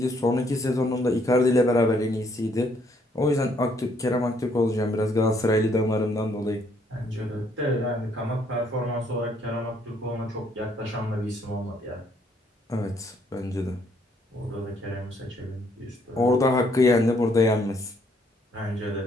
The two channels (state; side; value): normal; both; correlation 0.68